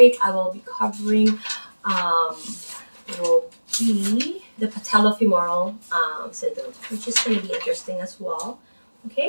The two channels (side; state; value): both; inverted; correlation -1.00